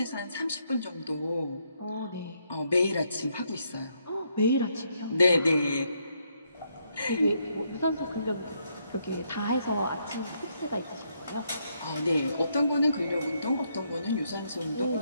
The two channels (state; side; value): inverted; both; correlation -0.75